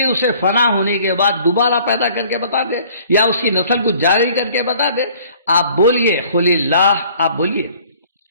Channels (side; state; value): both; inverted; correlation -0.55